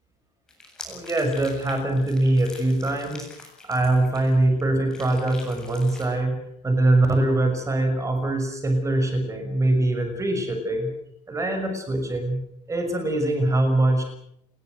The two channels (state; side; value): normal; both; correlation 0.87